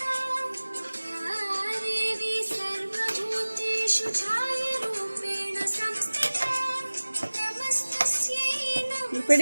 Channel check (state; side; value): inverted; both; correlation -1.00